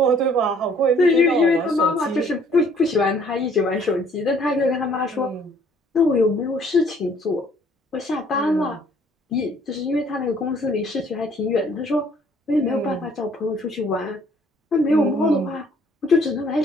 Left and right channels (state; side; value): normal; both; correlation 0.60